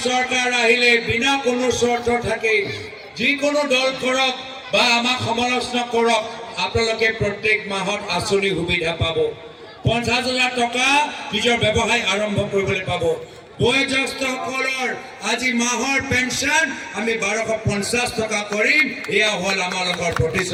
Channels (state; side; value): identical; both; correlation 1.00